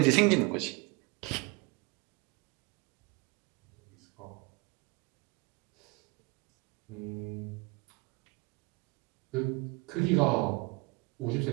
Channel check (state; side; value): quieter; left; 27.9 dB